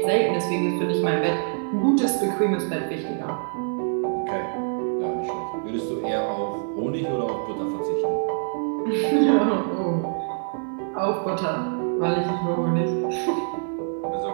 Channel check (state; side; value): silent; left; 62 dB below the other